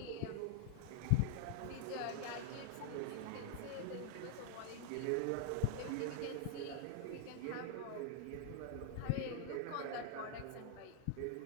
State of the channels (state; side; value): different; both; correlation 0.00